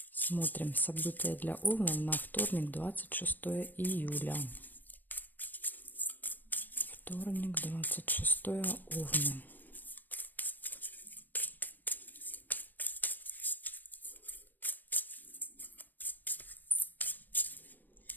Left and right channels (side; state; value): right; late; 0.090 ms